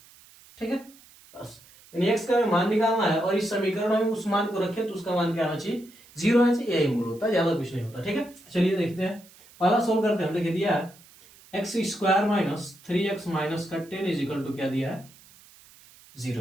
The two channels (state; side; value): noise; right; hiss, 25 dB below the sound